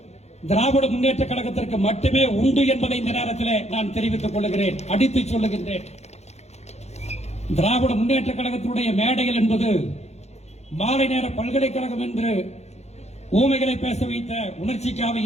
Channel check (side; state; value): right; late; 0.32 ms